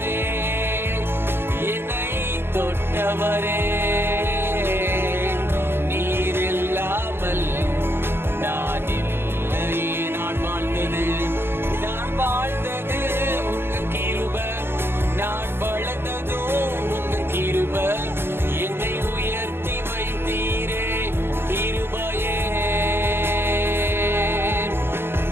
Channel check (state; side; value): late; left; 0.11 ms